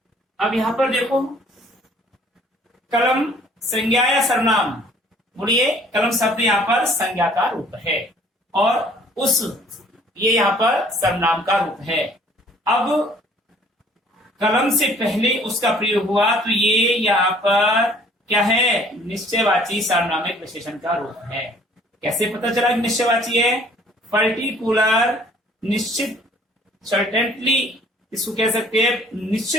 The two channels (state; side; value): normal; both; correlation 0.56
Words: अब यहां पर देखो, कलम संज्ञा या सर्वनाम? बोलिए, कलम शब्द यहां पर संज्ञा का रूप है और उस ये यहां पर सर्वनाम का रूप है। अब कलम से पहले उसका प्रयोग हुआ तो ये यहाँ पर क्या है? निश्चयवाची सार्वनामिक विशेषण का रूप है। कैसे पता चला कि निश्चयवाची है? पर्टिकुलर, निश्चित, सर्टेनली, इसको कह सकते हैं